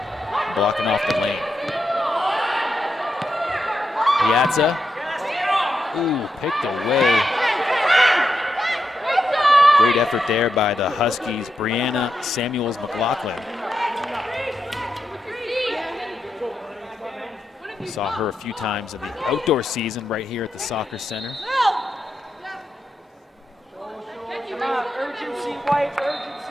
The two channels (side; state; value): both; normal; correlation 0.85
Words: blocking off the lane. Piazza. Ooh, picked away. Great effort there by the Huskies. Brianna Samuels-McLaughlin. We saw her a few times in the outdoor season right here at the soccer center. Urgency, White,